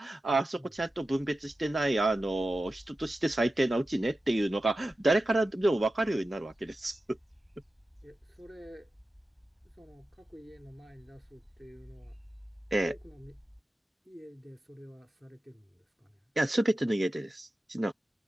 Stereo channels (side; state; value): both; normal; correlation 0.93